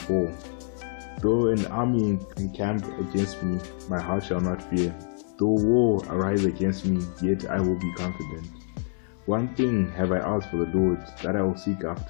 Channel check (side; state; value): right; silent; 61 dB below the other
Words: Though an army encamp against me, my heart shall not fear. Though war arise against me, yet I will be confident. One thing have I asked for the Lord, that I will seek